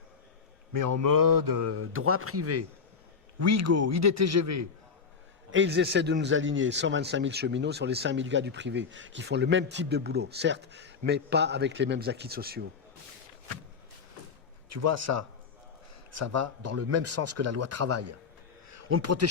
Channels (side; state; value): right; quieter; 5.6 dB